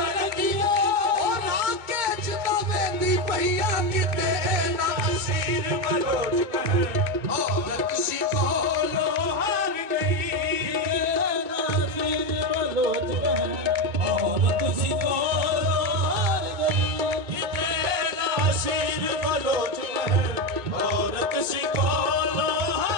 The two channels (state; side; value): late; left; 2.2 ms